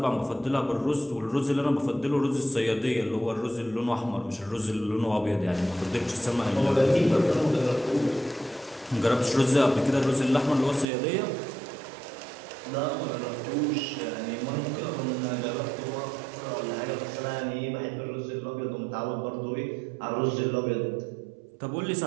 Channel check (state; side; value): drops out; left; at 10.9 s